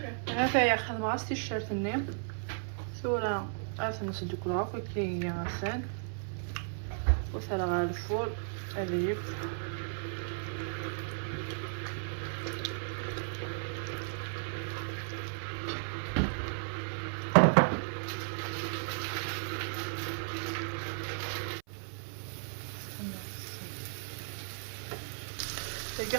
هذا يا خدمة غاستي الشارت ني ثورة عرفت نسدو كل هاكا كي غسان وثلا غا الفول اليف تلقى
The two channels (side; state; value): left; silent; 55 dB below the other